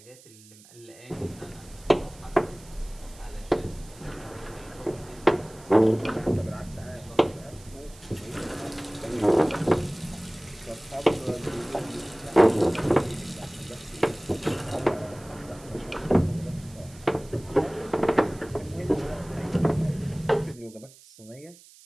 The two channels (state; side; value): noise; right; hiss, 23 dB below the sound